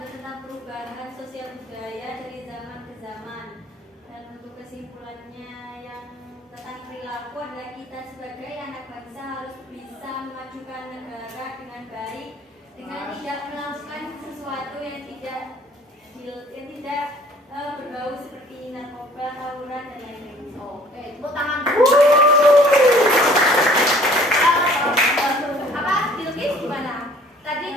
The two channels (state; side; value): normal; both; correlation 0.55